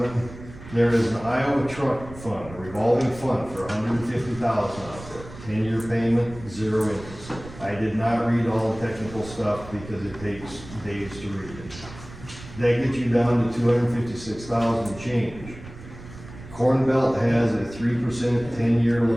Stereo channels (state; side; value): noise; right; rumble, 16 dB below the sound